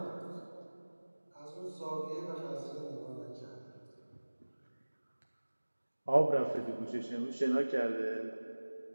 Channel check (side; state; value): both; inverted; correlation -1.00